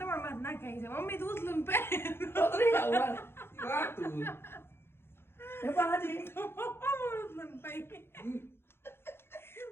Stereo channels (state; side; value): late; right; 0.11 ms